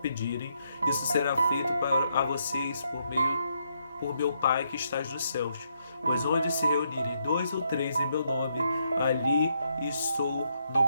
isso será feito a vocês por meu Pai que estás nos céus. Pois onde se reunirem 2 ou 3 em meu nome, ali estou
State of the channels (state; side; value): inverted; both; correlation -0.76